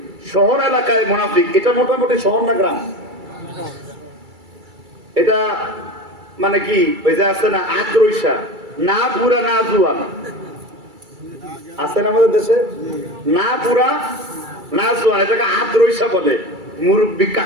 শহর এলাকায় মুনাফিক, এটা মোটামুটি শহর না গ্রাম? এটা মানে কি, ওই যে আছে না আদ্রৈশা, না বুড়া না জুয়ান, আছে না আমাদের দেশে? না বুড়া না জুয়ান, এটাকে আদ্রৈশা বলে। মুরব্বী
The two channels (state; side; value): late; left; 2.3 ms